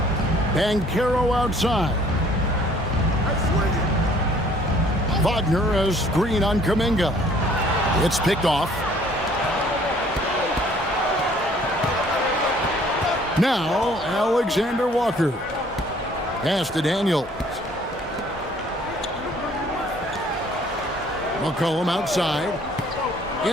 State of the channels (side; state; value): both; normal; correlation 0.57